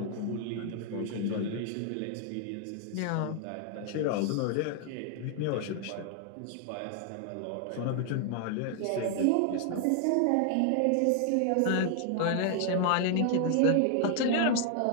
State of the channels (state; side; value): different; both; correlation 0.00